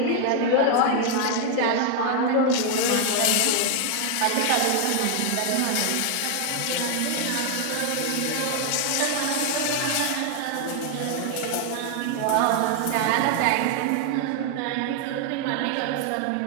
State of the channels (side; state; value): both; different; correlation 0.00